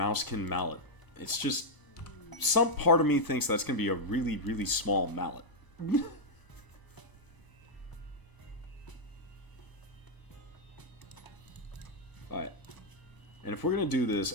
mallet. It's just... Some part of me thinks that's going to be a really, really small mallet. Alright. And if we're going to do this,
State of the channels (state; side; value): late; right; 1.0 ms